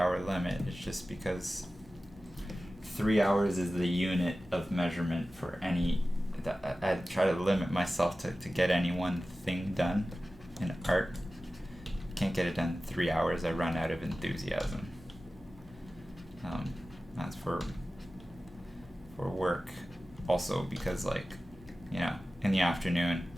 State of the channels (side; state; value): both; normal; correlation 0.95